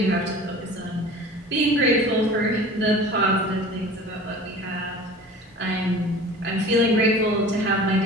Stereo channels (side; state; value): both; normal; correlation 0.41